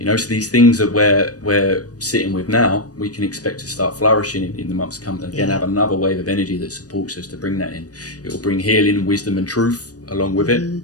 know, so these things that we're sitting with now, we can expect to start flourishing in the months to come. And again, have another wave of energy that supports us to bring that in. It will bring healing, wisdom and truth along with it.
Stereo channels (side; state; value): right; late; 0.68 ms